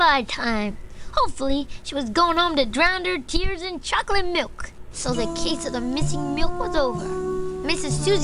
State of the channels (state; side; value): identical; both; correlation 1.00